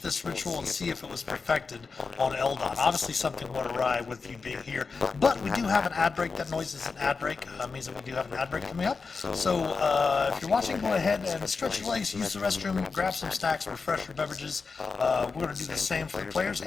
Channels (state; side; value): quieter; right; 4.6 dB